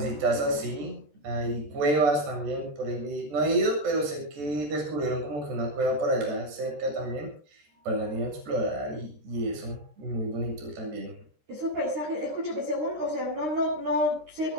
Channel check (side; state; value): left; late; 13 ms